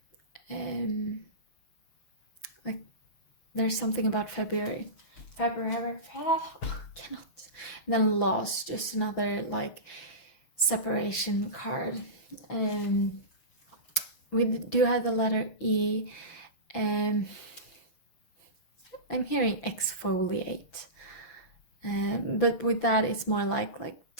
Like there's something about February. Cannot. And then loss, just another like separation card. We do have the letter E. I'm hearing exfoliate. But with that, it's more like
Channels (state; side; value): late; right; 6.0 ms